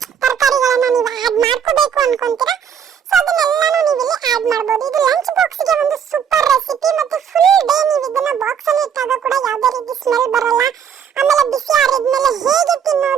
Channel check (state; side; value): quieter; left; 8.0 dB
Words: ತರಕಾರಿಗಳನ್ನ ನೀವು ಆ್ಯಡ್ ಮಾಡ್ಕೋಬೇಕು ಅನ್ಕೊಂತೀರಾ, ಸೊ ಅದನ್ನೆಲ್ಲಾನು ನೀವು ಇಲ್ಲಿ ಆ್ಯಡ್ ಮಾಡಬಹುದು. ಇದು ಲಂಚ್ ಬಾಕ್ಸ್ಗೆ ಒಂದು ಸೂಪರ್ ರೆಸಿಪಿ. ಮತ್ತೆ ಫುಲ್ ಡೇ ನೀವು ಇದನ್ನ ಬಾಕ್ಸ್ ಅಲ್ಲಿ ಇಟ್ಟಾಗ ಕೂಡ ಯಾವುದೇ ರೀತಿ ಸ್ಮೆಲ್ ಬರಲ್ಲ. ಆಮೇಲೆ ಬಿಸಿ ಆರಿದ್ಮೇಲೆ ಹೇಗೆ